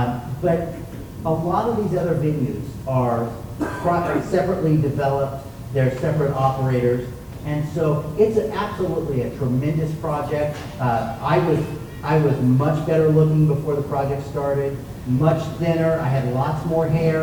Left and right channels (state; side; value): identical; both; correlation 1.00